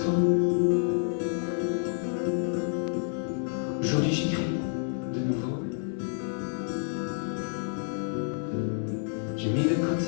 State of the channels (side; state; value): right; silent; 59 dB below the other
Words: Aujourd'hui j'écris de nouveau. J'ai mis de